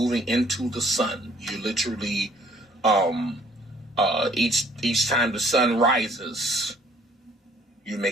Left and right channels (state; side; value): normal; both; correlation 0.60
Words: into the sun. You're literally each time the sun rises, you're